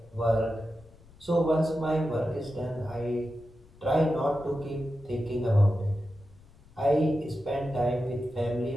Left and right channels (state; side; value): noise; left; rumble, 25 dB below the sound